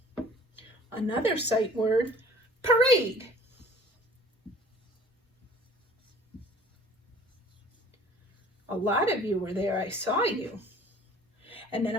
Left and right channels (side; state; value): both; normal; correlation 0.50